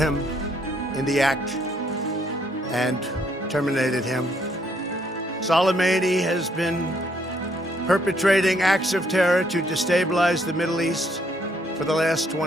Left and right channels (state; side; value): normal; both; correlation 0.69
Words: in the act and terminated him. Soleimani has been perpetrating acts of terror to destabilize the Middle East for the last